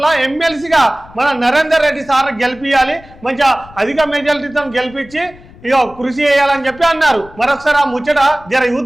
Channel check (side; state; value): left; noise; rumble, 22 dB below the sound